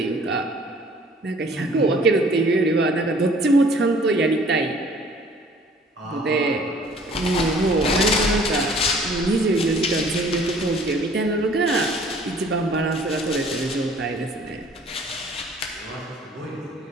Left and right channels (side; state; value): both; normal; correlation 0.54